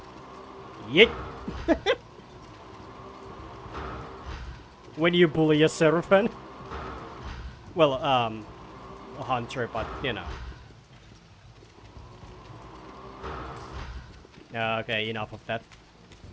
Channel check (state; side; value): identical; both; correlation 1.00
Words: Yeet. When you bully a Seraphim. Well, a hunter, but, you know. Okay, enough of that.